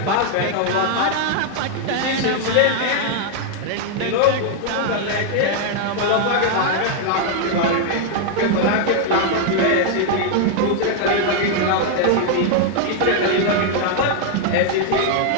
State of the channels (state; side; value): different; both; correlation 0.00